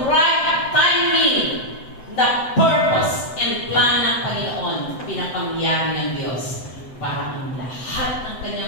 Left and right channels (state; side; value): late; right; 7.8 ms